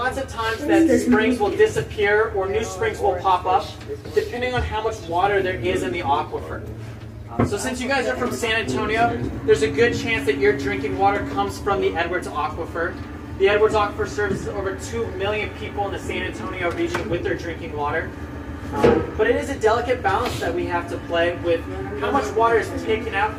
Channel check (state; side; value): identical; both; correlation 1.00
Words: of times that springs will disappear or new springs will pop up, depending on how much water there is in the aquifer. So since you guys are from San Antonio, there's a good chance that your drinking water comes from the Edwards Aquifer. The Edwards Aquifer services over 2 million people in the San Antonio region with their drinking water. But it is a delicate balance that we have to play with how much water is taken out